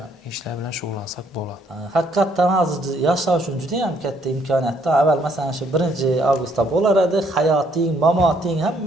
ishlar bilan shug'ullansak bo'ladi. Haqiqatan hozir yashash uchun juda ham katta imkoniyatda. Avval masalan shu 1-avgustda bo'lar edi, hayoting, mamoting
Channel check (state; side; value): normal; both; correlation 0.68